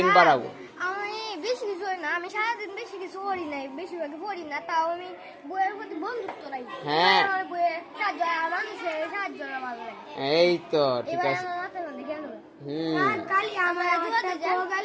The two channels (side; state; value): both; identical; correlation 1.00